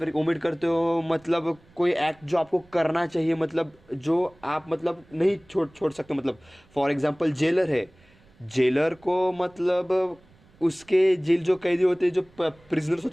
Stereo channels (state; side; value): noise; right; rumble, 29 dB below the sound